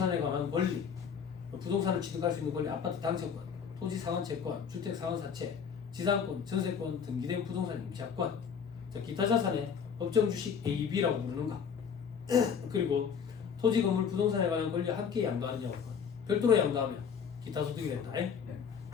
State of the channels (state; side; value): quieter; right; 6.9 dB